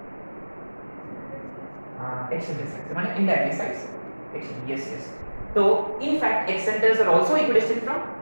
हाँ एक्सेंटर साइड से, माने इनडायरेक्टली साइड से एक्शन, यस। तो in fact excentres are also equidistant from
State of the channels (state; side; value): inverted; both; correlation -1.00